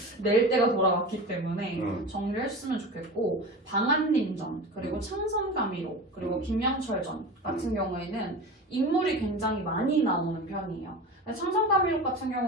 낼 때가 돌아왔기 때문에 정리를 했으면 좋겠고 방한림전 그리고 창선가미록 그리고 김양철전 같은 경우에는 인물이 굉장히 많이 나오는 편이에요. 창선가미록 같은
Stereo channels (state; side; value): normal; both; correlation 0.31